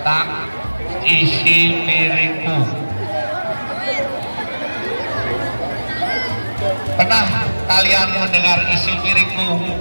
isi piringku. Pernah kalian mendengar isi piringku?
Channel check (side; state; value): both; inverted; correlation -1.00